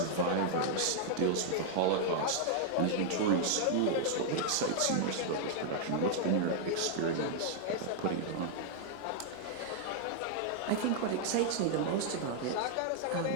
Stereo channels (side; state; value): both; different; correlation -0.01